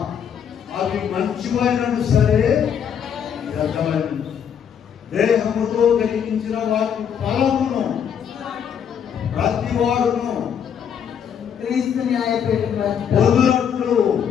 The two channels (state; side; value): quieter; right; 8.1 dB